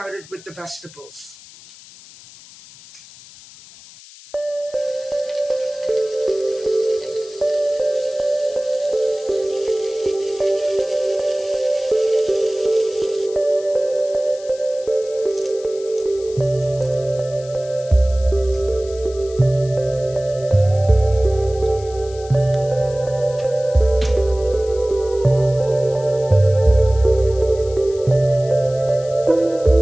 with the vegetables.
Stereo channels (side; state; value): left; noise; hiss, 20 dB below the sound